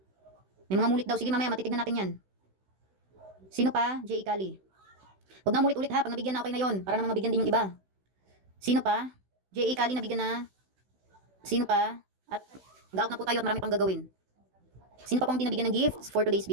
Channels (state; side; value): late; left; 16 ms